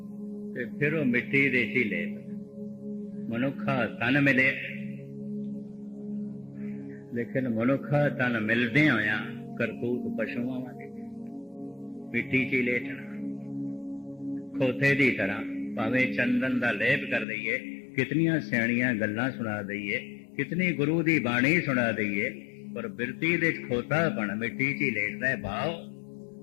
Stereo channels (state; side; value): drops out; right; at 17.2 s